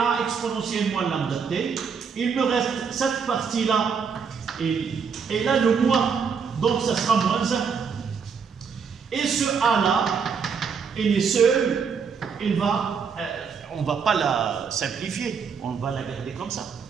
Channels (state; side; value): quieter; left; 6.2 dB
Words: exponentielle moins lambda t. Il me reste cette partie-là et là le moins. Donc, ça sera moins 1. Et ce A-là, il est seul, on ne va pas la simplifier, on va la garder comme ça.